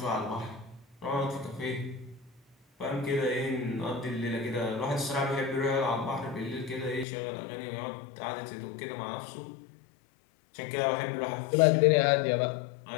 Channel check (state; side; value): drops out; right; at 7.1 s